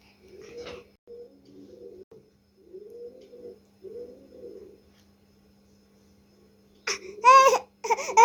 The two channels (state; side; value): identical; both; correlation 1.00